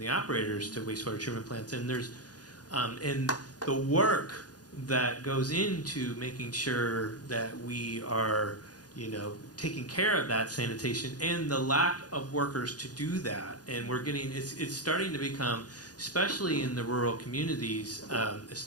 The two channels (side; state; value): right; late; 0.69 ms